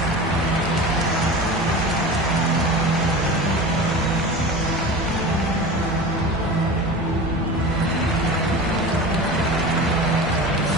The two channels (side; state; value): both; normal; correlation 0.32